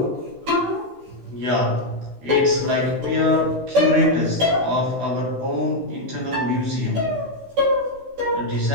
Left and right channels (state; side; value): late; left; 16 ms